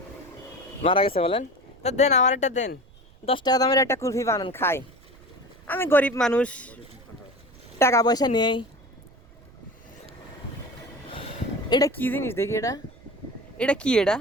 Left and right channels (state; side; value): noise; right; rumble, 25 dB below the sound